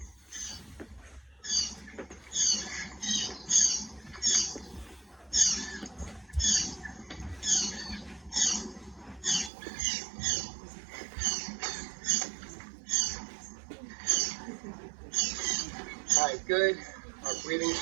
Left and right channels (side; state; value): left; drops out; at 9.5 s